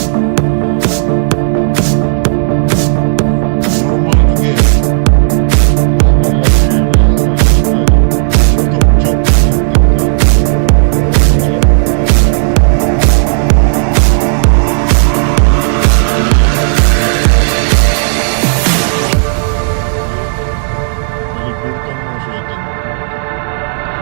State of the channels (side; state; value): left; silent; digital silence